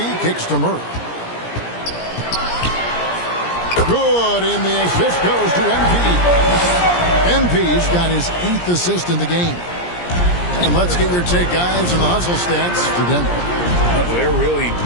kicks to Murray. Good, and the assist goes to MP. MP's got his 8th assist in the game. And let's get your take, guys, on the hustle stats for Denver. They're really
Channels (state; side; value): late; right; 17 ms